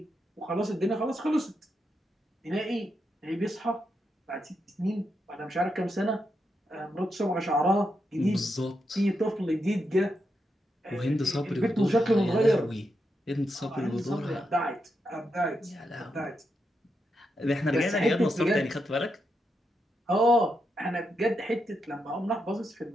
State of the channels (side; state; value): both; normal; correlation 0.84